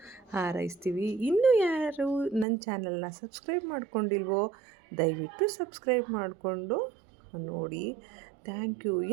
ಹಾರೈಸ್ತೀವಿ. ಇನ್ನೂ ಯಾರು ನನ್ನ ಚಾನಲ್ನ ಸಬ್ಸ್ಕ್ರೈಬ್ ಮಾಡ್ಕೊಂಡಿಲ್ವೋ ದಯವಿಟ್ಟು ಸಬ್ಸ್ಕ್ರೈಬ್ ಮಾಡಿಕೊಂಡು ನೋಡಿ. Thank you.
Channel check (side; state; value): left; drops out; at 2.5 s